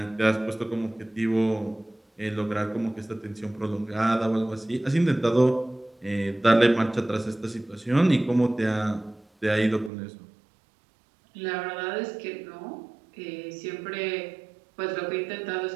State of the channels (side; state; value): left; drops out; at 9.9 s